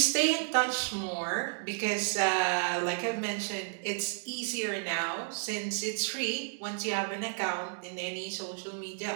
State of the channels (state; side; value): silent; left; 56 dB below the other